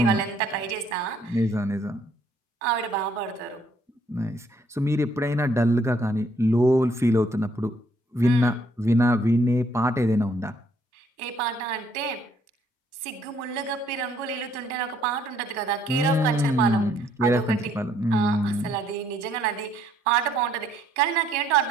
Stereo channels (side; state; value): both; normal; correlation 0.66